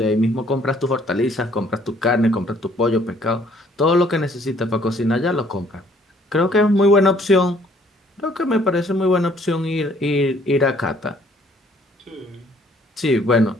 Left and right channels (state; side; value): normal; both; correlation 0.61